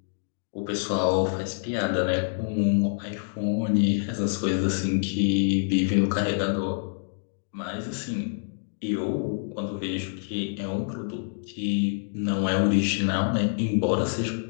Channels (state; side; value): silent; right; digital silence